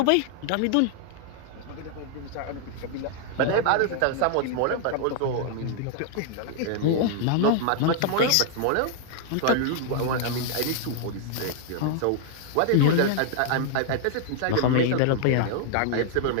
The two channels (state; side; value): different; both; correlation 0.00